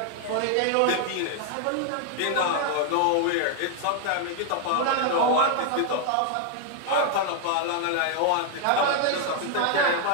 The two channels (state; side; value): different; both; correlation 0.00